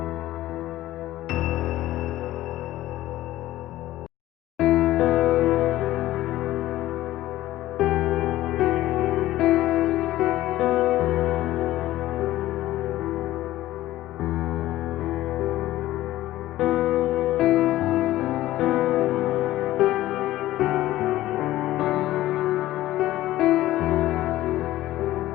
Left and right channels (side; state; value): right; quieter; 15.4 dB